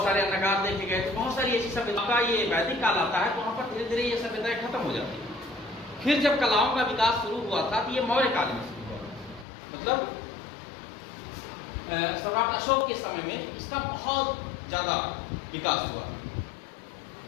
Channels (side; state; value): right; drops out; at 9.5 s